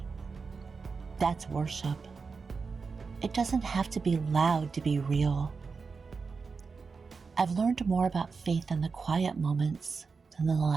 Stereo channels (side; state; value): left; quieter; 4.9 dB